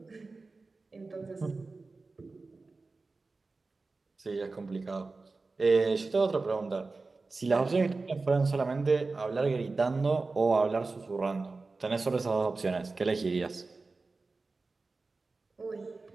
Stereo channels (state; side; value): quieter; left; 3.7 dB